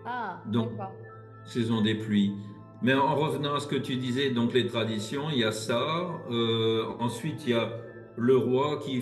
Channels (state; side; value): identical; both; correlation 1.00